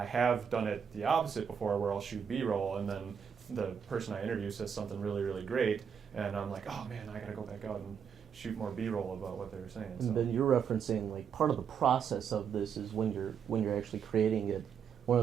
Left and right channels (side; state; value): left; quieter; 7.3 dB